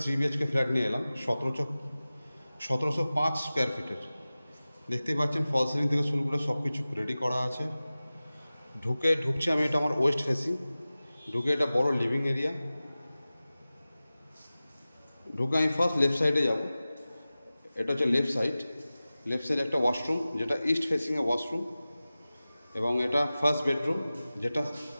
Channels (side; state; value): both; inverted; correlation -0.97